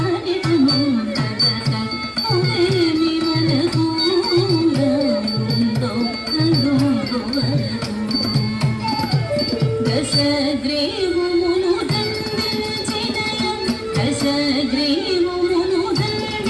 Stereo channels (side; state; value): both; identical; correlation 1.00